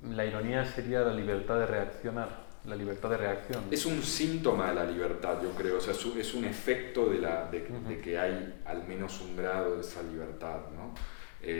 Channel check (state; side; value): silent; right; 54 dB below the other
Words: la ironía sería la libertad de reaccionar, la libertad de reacción. Es un síntoma de la libertad, yo creo, o sea, es un efecto de que hay al menos un grado de esa libertad, ¿no?